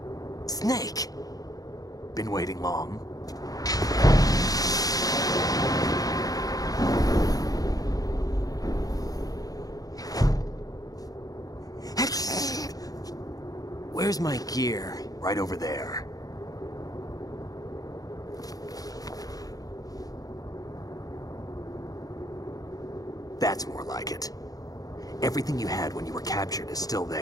Snake! Been waiting long? Where's my gear? Right over there. That's more like it. Everything you had when you were captured is still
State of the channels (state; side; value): late; right; 0.18 ms